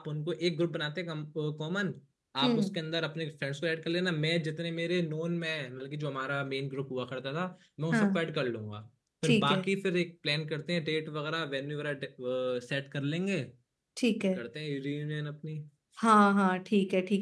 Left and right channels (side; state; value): both; identical; correlation 1.00